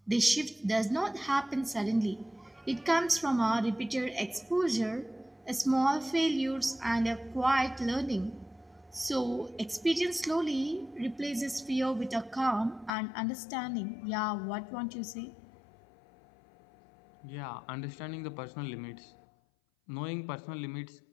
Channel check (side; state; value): right; drops out; at 12.9 s